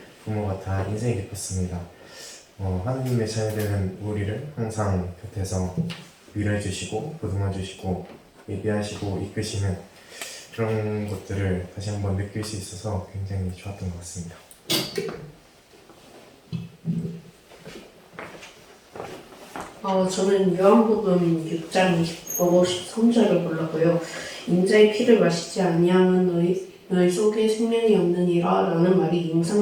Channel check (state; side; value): identical; both; correlation 1.00